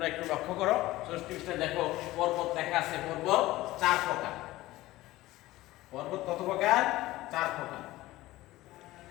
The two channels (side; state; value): right; quieter; 17.4 dB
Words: একটু লক্ষ্য করো। 64 পৃষ্ঠা দেখো, পর্বত লেখা আছে। পর্বত 4 প্রকার। পর্বত কত প্রকার? 4 প্রকার।